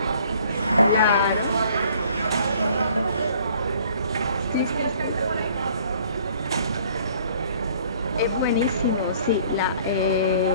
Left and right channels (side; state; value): both; inverted; correlation -0.56